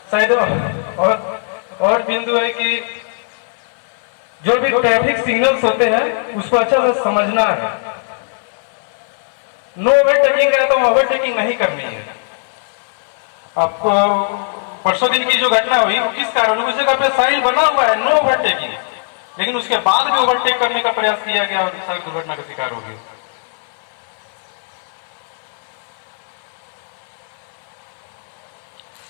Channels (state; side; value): silent; right; 58 dB below the other